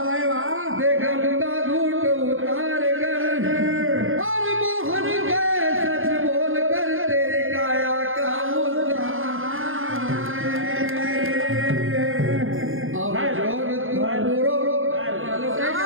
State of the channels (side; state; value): left; late; 0.59 ms